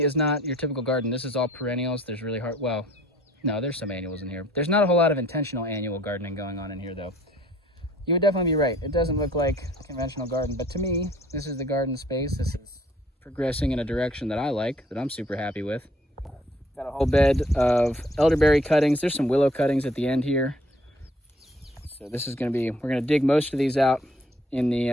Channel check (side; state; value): both; normal; correlation 0.59